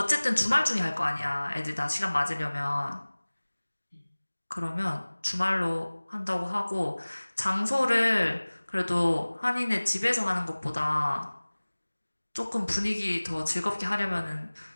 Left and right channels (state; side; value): inverted; both; correlation -1.00